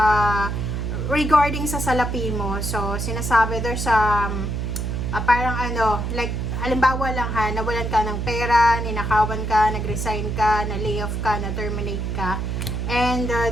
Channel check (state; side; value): noise; right; hum, 2 dB below the sound